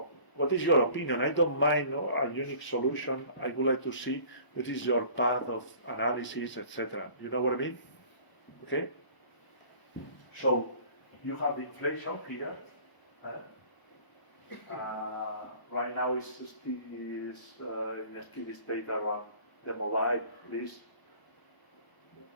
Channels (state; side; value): late; right; 1.0 ms